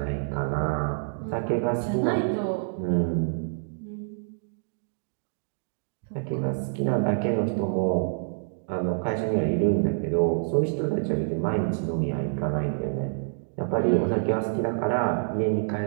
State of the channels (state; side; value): silent; left; digital silence